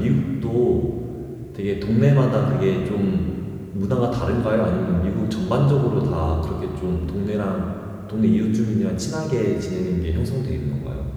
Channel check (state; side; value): identical; both; correlation 1.00